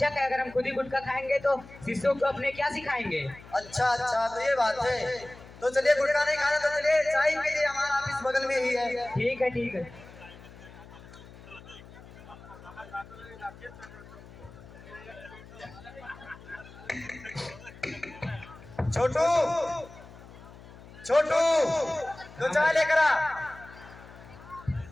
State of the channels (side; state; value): left; noise; hum, 19 dB below the sound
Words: है। अगर हम खुद ही गुटखा खाएंगे तो शिष्यों को अपने क्या सिखाएंगे। अच्छा अच्छा, तो ये बात है। तो चलिए गुटखा नहीं खाना तो चलिए चाय पीजिए, हमारा ऑफिस बगल में ही है। ठीक है। छोटू छोटू तो चाय लेकर आ।